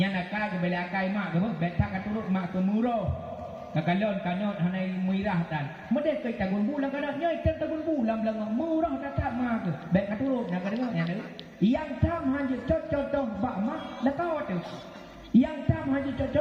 nakal ke bela akai mak ke baik tak katurut mak ke murah. Kakalon kanot hanai muirah tan. Mede ke tagun bulan kada nya tagun bulan belang murah datang mak ke. Baik katurut nak dengar nya. Yang tam hanya contoh ba mak lakau tu. Yang tam hanya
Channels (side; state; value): both; identical; correlation 1.00